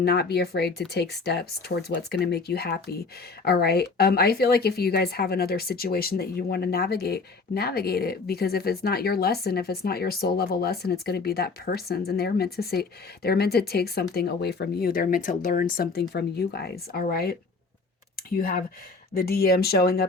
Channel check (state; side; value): quieter; right; 4.2 dB